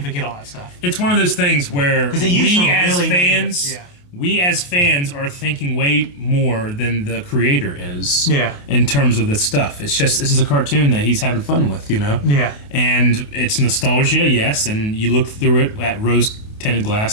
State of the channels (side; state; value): right; late; 28 ms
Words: forget all that stuff. It's one of those things where we as fans are thinking way more than the creator is. Yeah. In terms of this stuff, it's just this is a cartoon that he's having fun with, you know. Yeah. And it's nostalgia, yes, and you look through it at rose-tinted